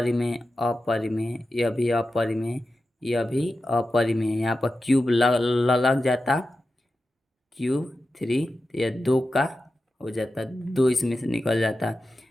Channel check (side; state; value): both; normal; correlation 0.92